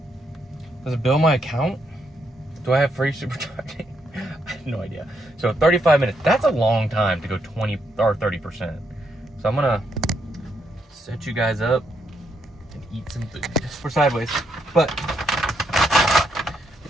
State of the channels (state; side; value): normal; both; correlation 0.77